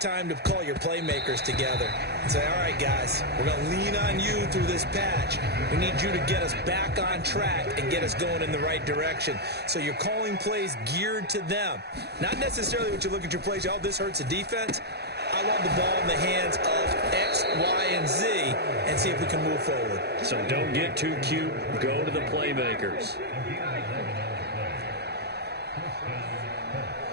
to call your playmakers together and say, all right, guys, we're going to lean on you through this patch. We need you to get us back on track and get us going in the right direction. So you're calling plays geared to them. Not necessarily what you look at your plays, oh, this hurts the defense. I want the ball in the hands of X, Y, and Z and see if we can move forward. So don't get too cute. Go to the playmakers.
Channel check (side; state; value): left; late; 0.48 ms